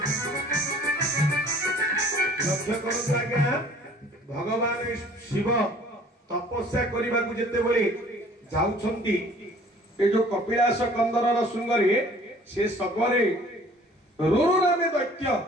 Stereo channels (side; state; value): both; normal; correlation 0.52